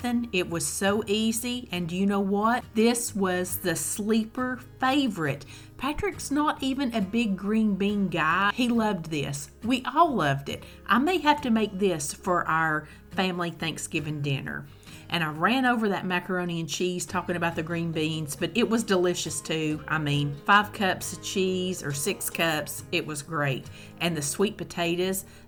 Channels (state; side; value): identical; both; correlation 1.00